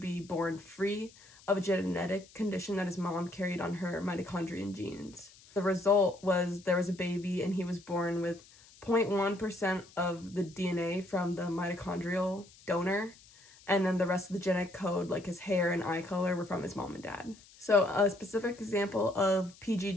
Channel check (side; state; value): left; noise; hiss, 24 dB below the sound